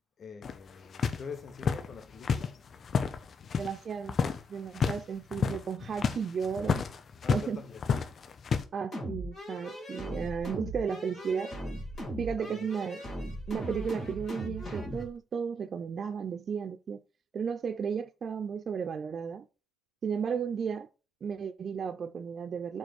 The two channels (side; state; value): both; normal; correlation 0.76